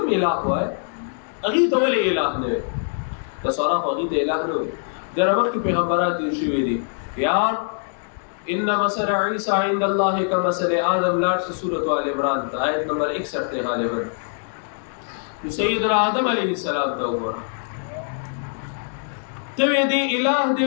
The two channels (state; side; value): silent; right; digital silence